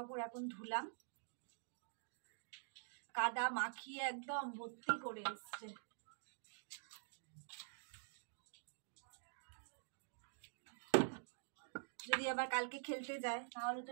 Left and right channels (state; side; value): silent; left; digital silence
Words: এখন ধুলাম, কাদা মাখিয়ে একদম ভর্তি করে এসছে। যদি আবার কালকে খেলতে যায় তাহলে তো